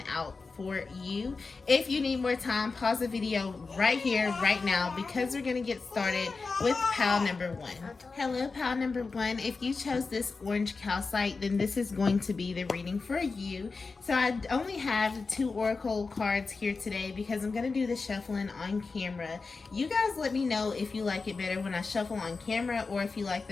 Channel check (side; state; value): right; quieter; 4.3 dB